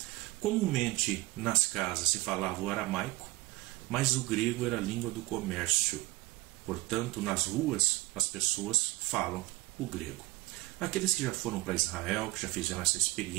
Comumente nas casas se falava o aramaico, mas o grego era a língua do comércio. Portanto, nas ruas as pessoas falam o grego. Aqueles que já foram para Israel, que já fizeram essa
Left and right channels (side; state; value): left; quieter; 20.4 dB